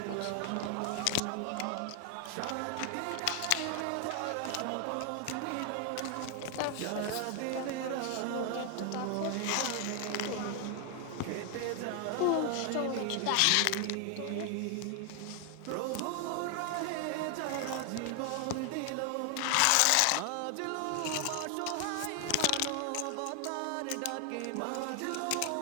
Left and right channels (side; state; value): both; different; correlation 0.00